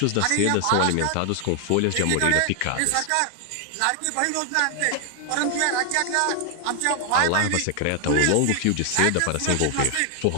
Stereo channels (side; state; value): both; different; correlation 0.00